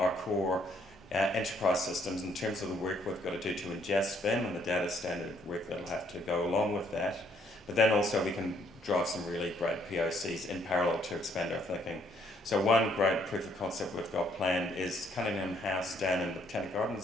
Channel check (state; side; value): normal; both; correlation 0.67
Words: core enterprise systems in terms of the work we've got to do to ingest BIM and the data standard work that'll have to go along with that. But then also we can drive some really great POCs in parallel to expand our thinking. So one great proof of concept we've got planned is Cunningham House down in the Botanic